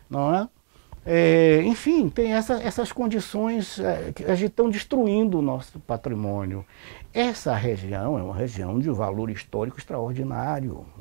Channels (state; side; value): silent; left; digital silence